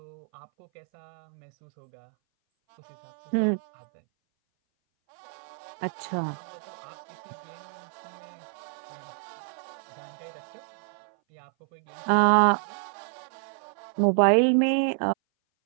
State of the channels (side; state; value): left; silent; 58 dB below the other